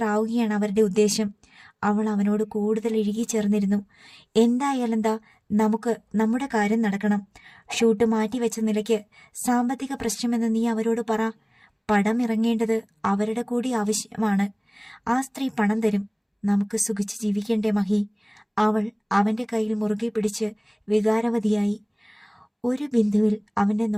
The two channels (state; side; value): identical; both; correlation 1.00